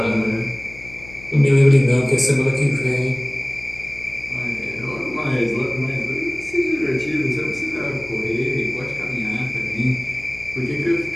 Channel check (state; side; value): noise; left; hum, 19 dB below the sound